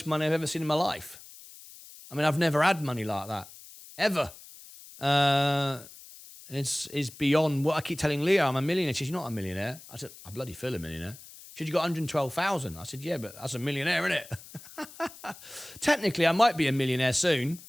money I've ever seen in my life. I mean, I've never had money like that. Ever. It's beyond what I keep telling Leah. I'm a millionaire. She says, "You're not a millionaire." I said, "I bloody feel a millionaire." She said, "You got 112,000. I said, "Yeah, but that's a millionaire, isn't it?" Technically, I might be a millionaire soon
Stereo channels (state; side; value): noise; left; hiss, 18 dB below the sound